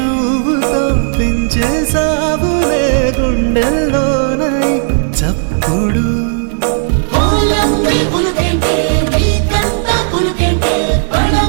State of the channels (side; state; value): left; silent; digital silence